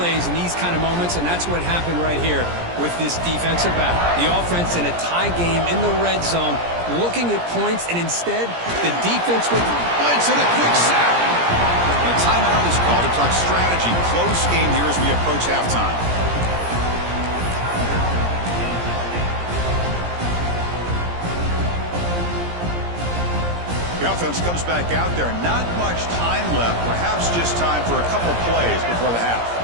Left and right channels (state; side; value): late; left; 17 ms